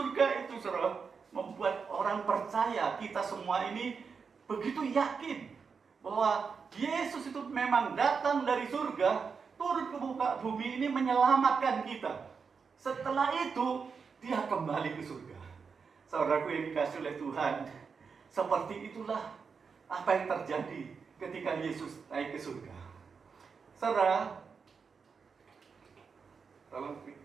itu, saudara, membuat orang percaya kita semua ini begitu yakin bahwa Yesus itu memang datang dari surga, turun ke muka bumi ini menyelamatkan kita. Setelah itu Dia kembali ke surga. Saudaraku yang dikasihi oleh Tuhan, seperti itulah apa yang terjadi ketika Yesus naik ke surga. Saudara, tolong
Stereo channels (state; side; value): quieter; left; 5.6 dB